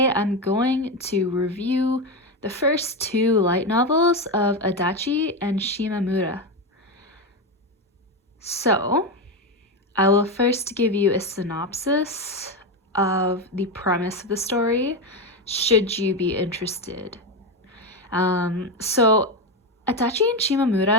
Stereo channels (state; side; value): normal; both; correlation 0.13